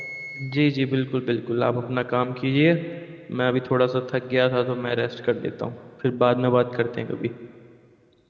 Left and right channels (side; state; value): both; identical; correlation 1.00